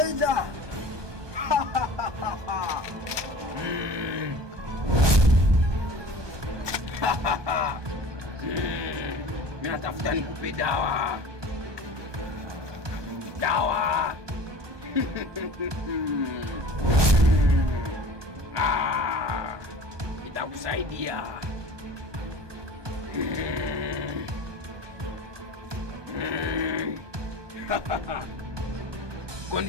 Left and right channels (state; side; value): late; left; 1.2 ms